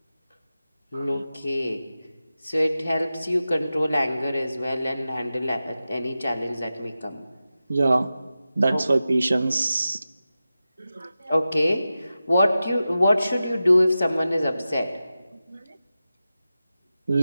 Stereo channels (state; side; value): inverted; both; correlation -0.93